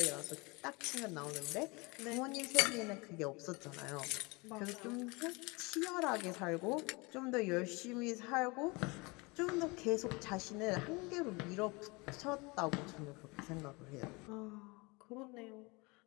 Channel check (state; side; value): quieter; right; 26.5 dB